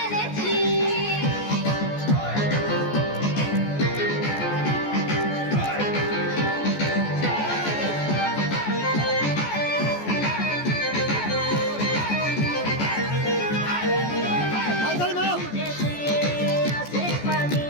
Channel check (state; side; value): late; right; 14 ms